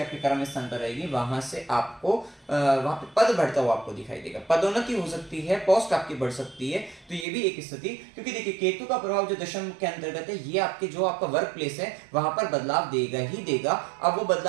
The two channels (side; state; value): left; drops out; at 7.2 s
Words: आपके कर्म स्थान पर रहेगी, वहां से आपको वहां पे पद बढ़ता हुआ आपको दिखाई देगा, पदोन्नति हो सकती है, पोस्ट आपकी बढ़ सकती है, तो ये भी एक स्थिति। क्योंकि देखिए केतु का प्रभाव जो दशम के अंतर्गत है, ये आपके जो आपका वर्क प्लेस है वहां पर बदलाव देगा ही देगा। अब वो